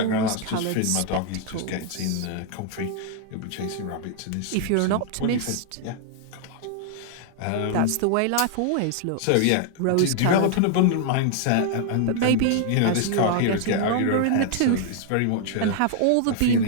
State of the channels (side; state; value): both; different; correlation 0.00